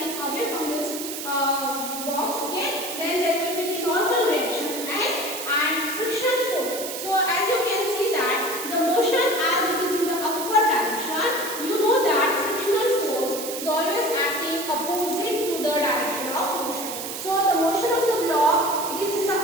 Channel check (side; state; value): right; noise; hiss, 7 dB below the sound